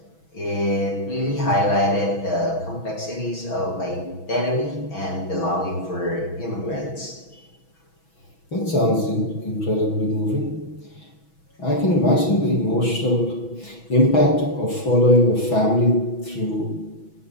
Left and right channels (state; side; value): late; right; 6.2 ms